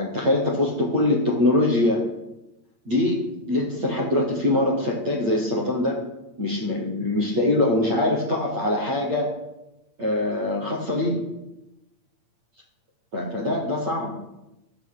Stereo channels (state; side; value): late; left; 8.7 ms